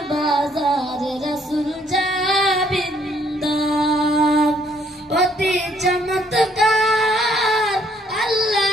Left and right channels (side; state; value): both; normal; correlation 0.66